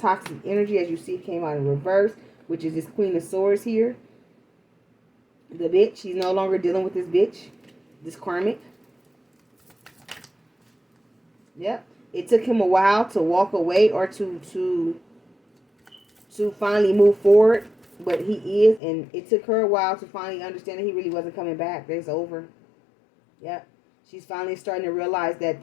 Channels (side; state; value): right; drops out; at 18.8 s